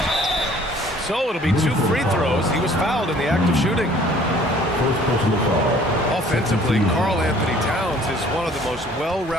So it'll be 2 free throws. He was fouled in the act of shooting. First personal foul. Offensively, Karl Anthony Towns is one of the most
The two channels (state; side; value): normal; both; correlation 0.55